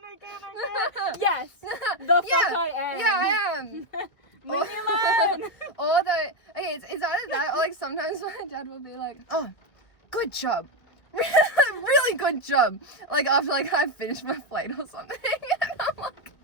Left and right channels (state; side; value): late; right; 1.9 ms